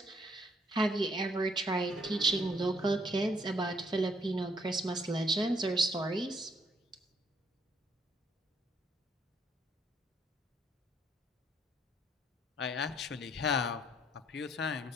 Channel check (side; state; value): both; normal; correlation 0.69